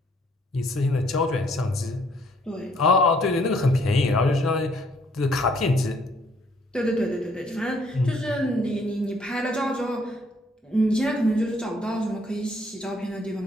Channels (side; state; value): both; normal; correlation 0.65